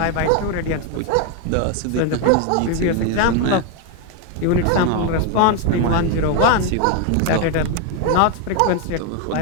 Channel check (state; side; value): different; both; correlation 0.01